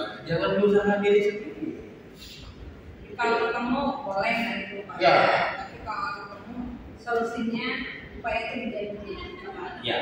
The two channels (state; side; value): identical; both; correlation 1.00